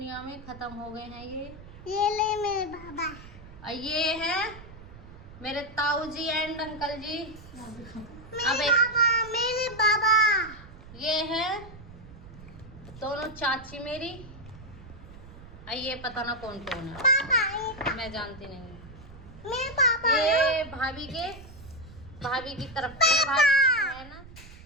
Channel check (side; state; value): right; noise; rumble, 17 dB below the sound